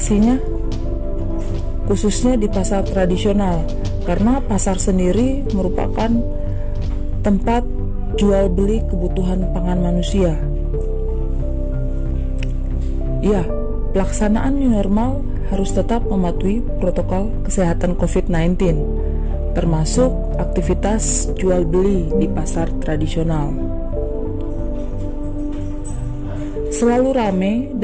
khususnya di pasar tradisional, karena pasar sendiri merupakan tempat jual beli kebutuhan pangan manusia. Ya, pelaksanaan new normal harus tetap mematuhi protokol kesehatan COVID-19, termasuk aktivitas jual beli di pasar tradisional. Selalu ramai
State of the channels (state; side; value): identical; both; correlation 1.00